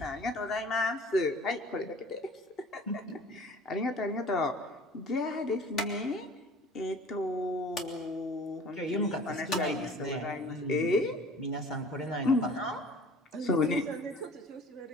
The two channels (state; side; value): normal; both; correlation 0.46